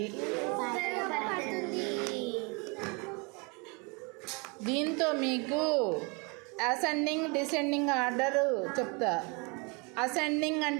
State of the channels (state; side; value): quieter; left; 30.4 dB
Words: దీంతో మీకు అసెండింగ్ డిసెండింగ్ ఆర్డర్ చెప్తా. అసెండింగ్